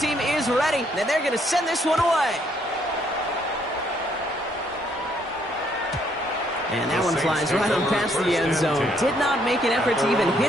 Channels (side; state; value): both; normal; correlation 0.69